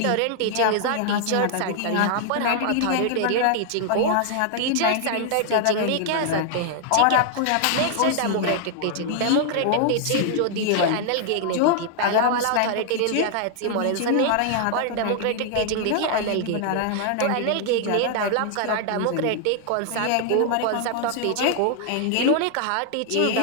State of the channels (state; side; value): different; both; correlation 0.00